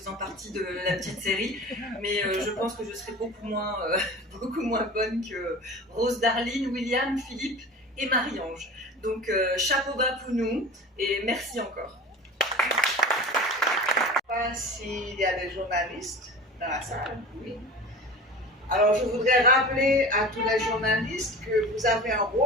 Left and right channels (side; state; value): both; normal; correlation 0.36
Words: partie de la petite série, mais je pense que je serai beaucoup moins bonne que Rose Darline, William, Philippe et Marie-Ange. Donc chapeau bas pour nous et merci encore. Je ne sais pas s'il y a des journalistes dans la salle. Oui. Alors je voudrais rappeler à tous les journalistes que vous avez un